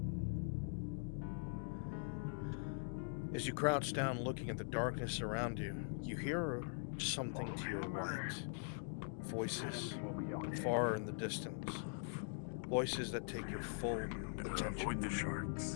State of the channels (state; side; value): silent; right; digital silence